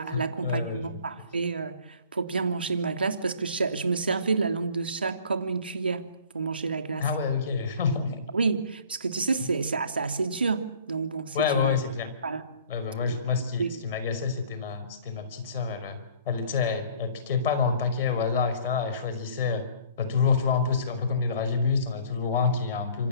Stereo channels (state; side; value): inverted; both; correlation -0.52